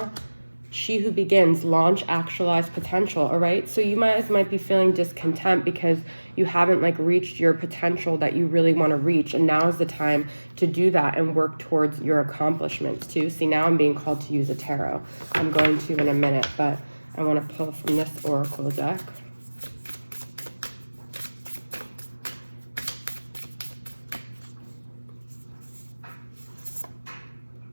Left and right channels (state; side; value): inverted; both; correlation -1.00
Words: She who begins, launch, actualize potential, all right? So you might be feeling discontent because you haven't like reached your potential that you really want to reach. And now is the time to do that and work towards your accomplishments too. See, now I'm being called to use a tarot. I'm going to in a minute, but I want to pull from this oracle deck.